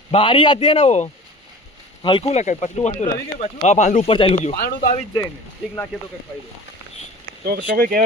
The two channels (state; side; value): normal; both; correlation 0.40